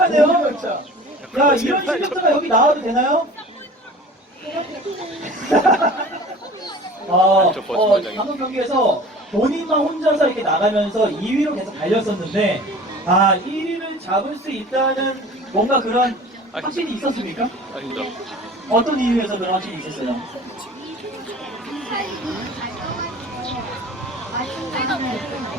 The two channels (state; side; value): normal; both; correlation 0.42